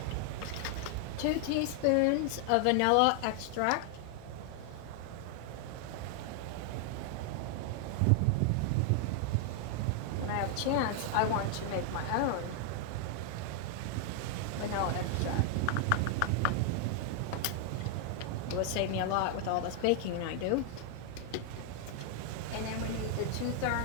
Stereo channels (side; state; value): both; different; correlation 0.00